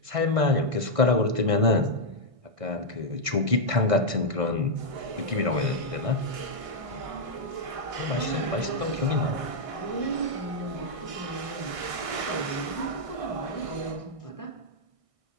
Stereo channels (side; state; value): left; late; 1.6 ms